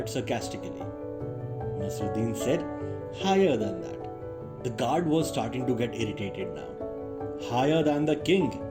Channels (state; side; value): identical; both; correlation 1.00